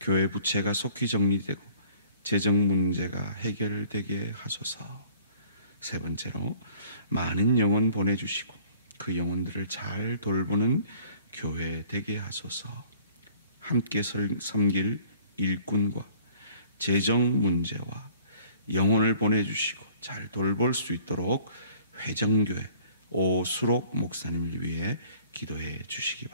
교회 부채가 속히 정리되고 재정 문제가 해결되게 하소서. 세 번째로, 많은 영혼 보내주시고 그 영혼들을 잘 돌보는 교회 되게 하소서. 함께 섬길 일꾼과 재정 문제와 영혼을 보내주시고 잘 돌볼 수 있도록 회정교회 오수록 목사님을 위해 기도해 주시기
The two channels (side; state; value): both; inverted; correlation -0.55